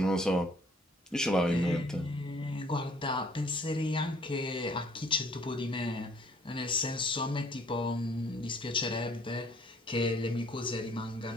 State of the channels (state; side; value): normal; both; correlation 0.59